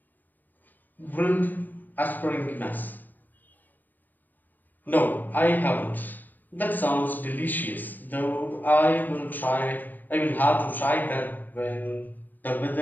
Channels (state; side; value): late; right; 0.088 ms